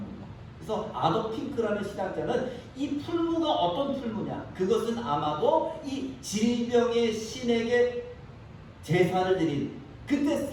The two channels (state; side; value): identical; both; correlation 1.00